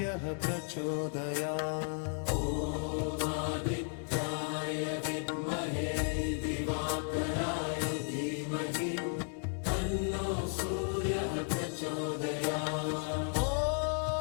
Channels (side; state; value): right; silent; 55 dB below the other